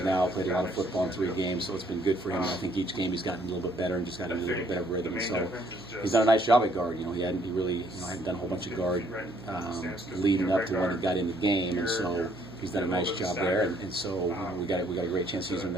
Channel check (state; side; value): noise; right; hum, 19 dB below the sound